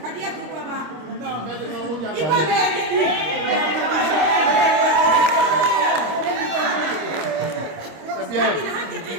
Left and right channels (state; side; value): late; left; 26 ms